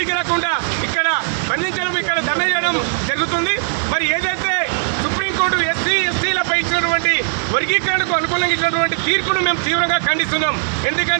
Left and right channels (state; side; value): silent; left; 67 dB below the other